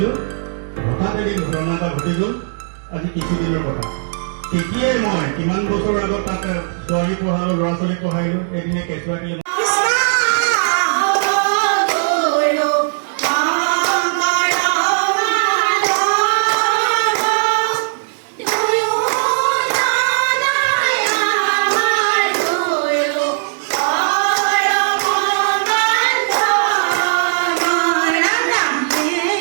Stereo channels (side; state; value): left; silent; digital silence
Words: হঠাৎ এদিন ঘটনা এটা ঘটি গ'ল আজি কিছুদিনৰ কথা তেতিয়াই মই কিমান বছৰ আগত তাত ছোৱালী পঢ়ালোঁ ল'ৰা ছোৱালী পঢ়াইলোঁ এদিনে কেঁচুৱাকে